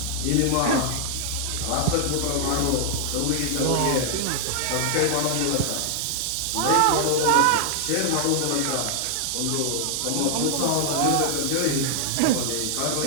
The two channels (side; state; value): both; different; correlation 0.00